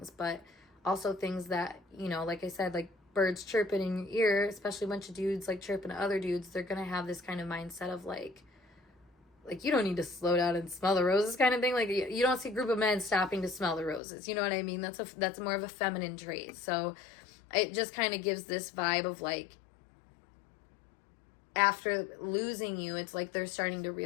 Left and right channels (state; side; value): drops out; right; at 14.0 s